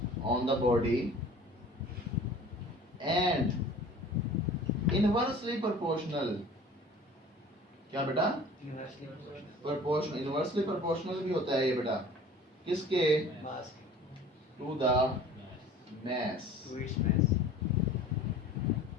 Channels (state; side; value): normal; both; correlation 0.45